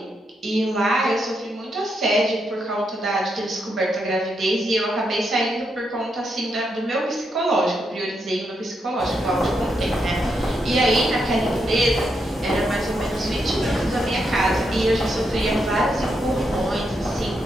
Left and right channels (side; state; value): both; normal; correlation 0.81